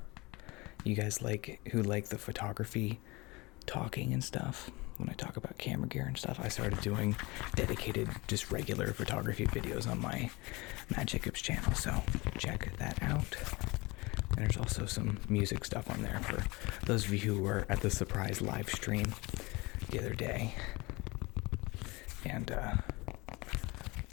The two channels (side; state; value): right; quieter; 24.1 dB